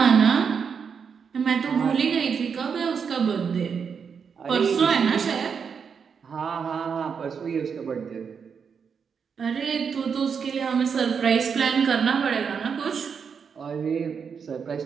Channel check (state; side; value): quieter; left; 6.4 dB